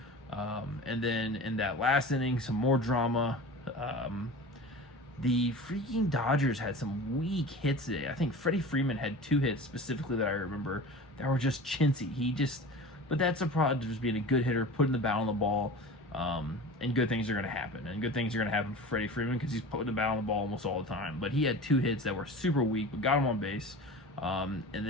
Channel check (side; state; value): both; normal; correlation 0.35